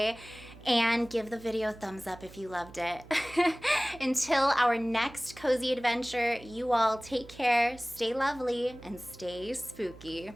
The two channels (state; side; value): noise; right; hum, 20 dB below the sound